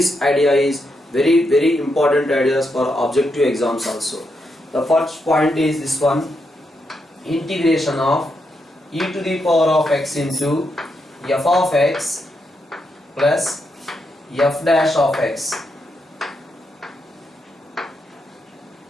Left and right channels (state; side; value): normal; both; correlation 0.82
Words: idea is very important ideas for objective exams also. The first point is this one: integration of e to the power of x into f of x plus f dash of x